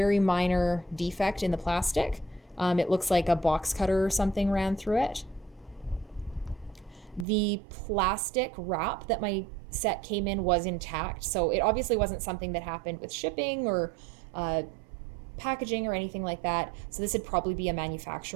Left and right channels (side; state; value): left; drops out; at 7.2 s